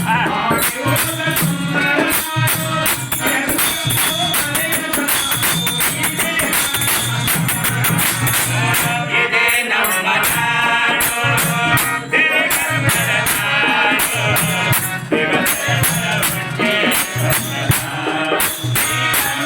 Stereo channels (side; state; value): both; identical; correlation 1.00